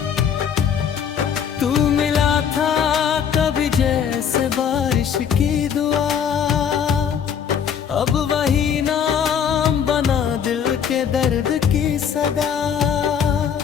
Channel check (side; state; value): right; quieter; 7.9 dB